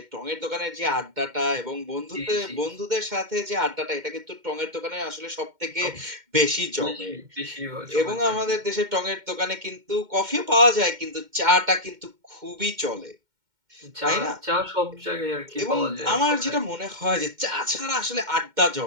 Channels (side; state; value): left; late; 2.1 ms